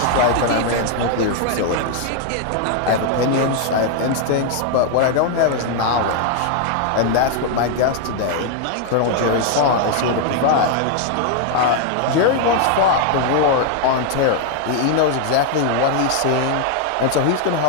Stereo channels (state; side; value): different; both; correlation 0.00